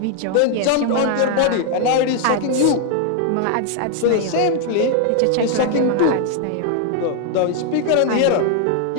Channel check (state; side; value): different; both; correlation 0.00